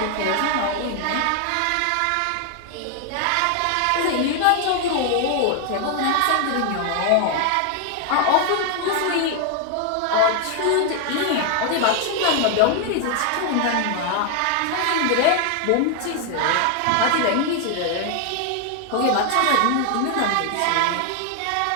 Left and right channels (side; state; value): both; different; correlation 0.00